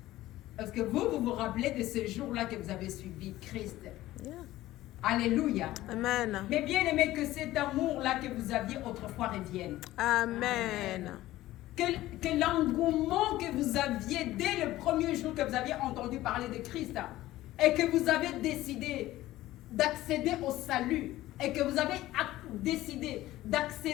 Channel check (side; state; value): right; quieter; 15.9 dB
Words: Parce que vous rappelez de ce jour-là que vous avez suivi Christ. Yeah. Alléluia. Amen. Mais bien aimé, que cet amour-là que vous aviez autrefois revienne. Amen. Que l'engouement que vous aviez dès le premier jour que vous aviez entendu parler de Christ et que vous avez décidé d'accéder au salut et que vous avez décidé